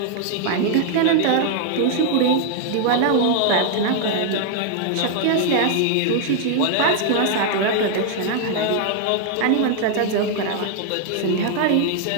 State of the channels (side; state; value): both; different; correlation 0.00